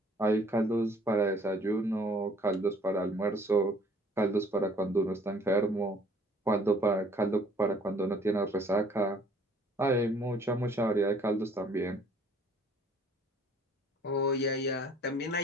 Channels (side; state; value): both; normal; correlation 0.57